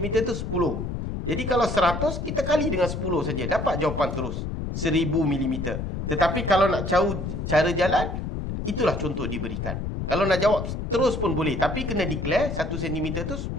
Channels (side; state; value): left; noise; rumble, 4 dB below the sound